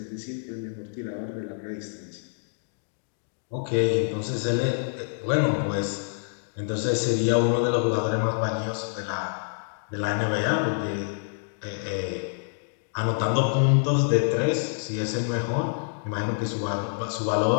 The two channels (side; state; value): right; silent; digital silence